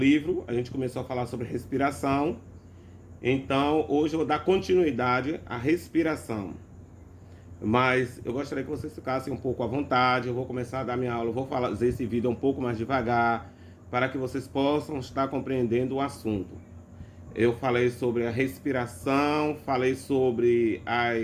a gente começou a falar sobre respiração. Então hoje eu vou dar continuidade à respiração. Mas eu gostaria que vocês ficassem um pouco à vontade. Eu vou começar a dar minha aula, eu vou fazer esse vídeo um pouco mais devagar, para que vocês possam estar compreendendo o assunto. Eu falei sobre a respiração, falei sobre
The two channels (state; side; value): identical; both; correlation 1.00